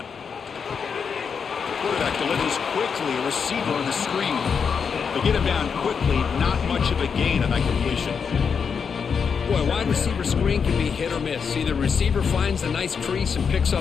Quarterback delivers quickly, a receiver on the screen. They get him down quickly, not much of a gain on that completion. Boy, wide receiver screen can be hit or miss. Either receiver finds a nice crease and picks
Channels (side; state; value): right; quieter; 6.3 dB